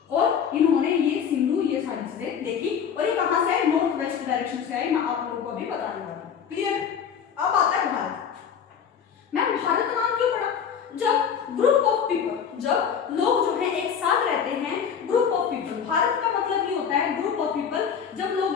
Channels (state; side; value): quieter; right; 7.5 dB